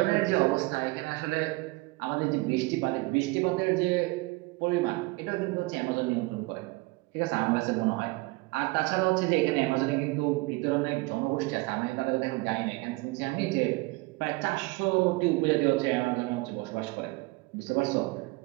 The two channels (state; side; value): quieter; left; 23.7 dB